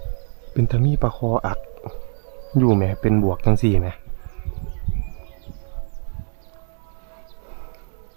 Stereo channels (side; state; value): left; silent; 63 dB below the other